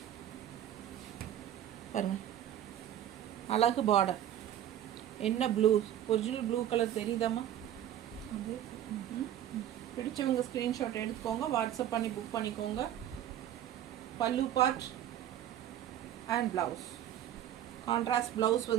பாருங்க அழகு பார்டர். என்ன ப்ளூ, ஒரிஜினல் ப்ளூ கலர் தெரியுதாம்மா? பிடிச்சவங்க ஸ்க்ரீன்ஷாட் எடுத்துக்கோங்க, வாட்ஸ்அப் பண்ணி புக் பண்ணிக்கோங்க. பல்லு part and blouse. Contrast blouse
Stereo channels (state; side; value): quieter; left; 11.3 dB